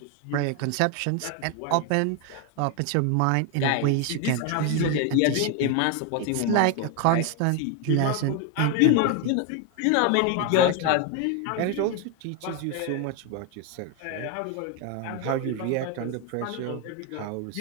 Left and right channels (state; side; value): different; both; correlation 0.01